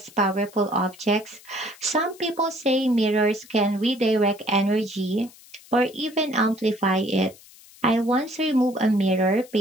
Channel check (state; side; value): noise; left; hiss, 23 dB below the sound